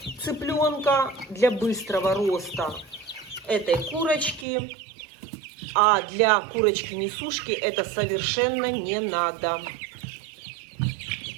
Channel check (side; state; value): left; drops out; at 4.5 s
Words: цыпленка, для быстрого роста этой курочки. А для курочки-несушки это совершенно не надо.